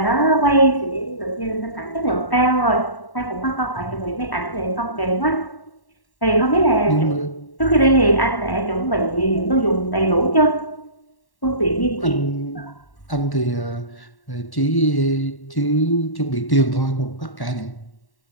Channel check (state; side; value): late; right; 1.1 ms